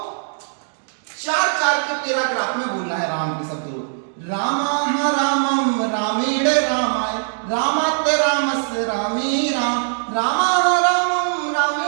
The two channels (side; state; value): left; silent; digital silence